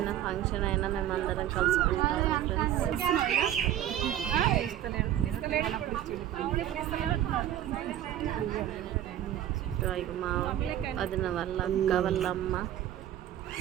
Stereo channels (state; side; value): quieter; left; 11.8 dB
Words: ఫంక్షన్ అయినా మేమందరం కలుసుకుంటాము ఫ్రెండ్స్. మా వదిన వాళ్ళ అక్క వాళ్ళ అమ్మ,